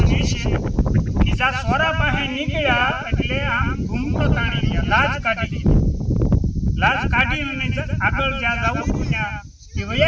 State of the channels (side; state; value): both; identical; correlation 1.00